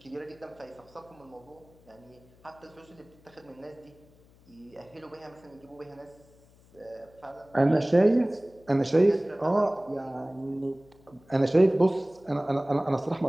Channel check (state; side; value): noise; left; hum, 28 dB below the sound